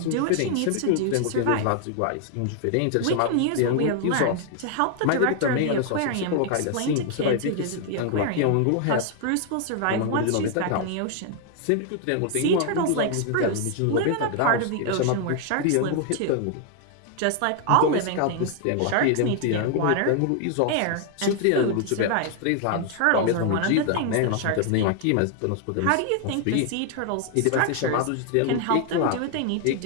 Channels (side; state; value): both; different; correlation 0.00